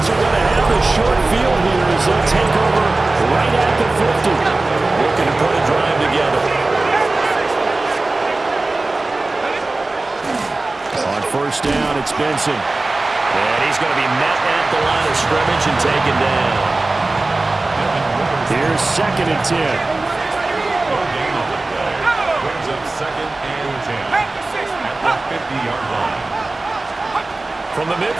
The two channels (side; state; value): left; quieter; 3.1 dB